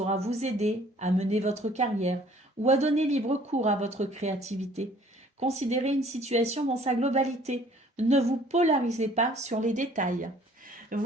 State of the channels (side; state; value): both; normal; correlation 0.56